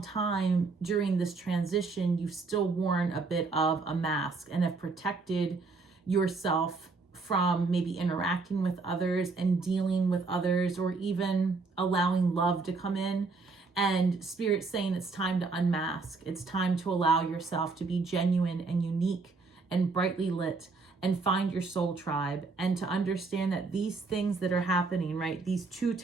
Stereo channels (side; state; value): left; quieter; 4.1 dB